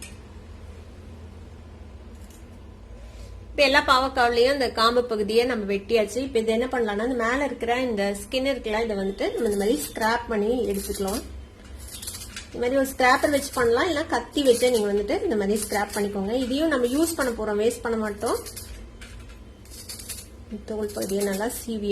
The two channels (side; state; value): both; identical; correlation 1.00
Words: இப்போ எல்லா பாவக்காவிலையும் இந்த காம்பு பகுதியை நம்ம வெட்டியாச்சு. இப்போ இது என்ன பண்ணலாம்னா, இந்த மேல இருக்கிற இந்த ஸ்கின் இருக்குல்ல, இதை வந்துட்டு நம்ம இந்த மாதிரி ஸ்கிராப் பண்ணி எடுத்துக்கலாம். இந்த மாதிரி ஒரு ஸ்கிராப்பர் வச்சு பண்ணலாம், இல்ல கத்தி வச்சு நீங்க வந்துட்டு இந்த மாதிரி ஸ்கிராப் பண்ணிக்கோங்க. இதையும் நம்ம யூஸ் பண்ண போறோம், வேஸ்ட் பண்ண மாட்டோம். தோல் பகுதியை நல்லா சீவி